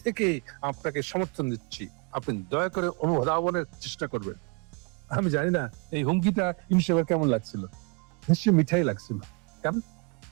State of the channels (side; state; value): left; quieter; 31.5 dB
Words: থেকে আপনাকে সমর্থন দিচ্ছি, আপনি দয়া করে অনুধাবনের চেষ্টা করবেন। আমি জানি না এই হুমকিটা ইনশাল্লাহ কেমন লাগছিল, নিশ্চয়ই মিঠাই লাগছিল। কেন?